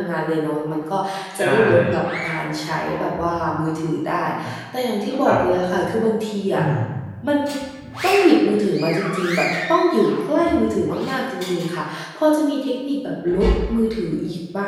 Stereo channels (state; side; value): identical; both; correlation 1.00